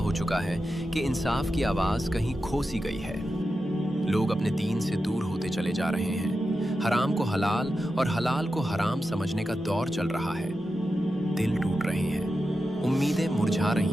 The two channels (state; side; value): normal; both; correlation 0.90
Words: चुका है कि इंसाफ की आवाज कहीं खो सी गई है। लोग अपने दीन से दूर होते चले जा रहे हैं। हराम को हलाल और हलाल को हराम समझने का दौर चल रहा है। दिल टूट रहे हैं, उम्मीदें मुरझा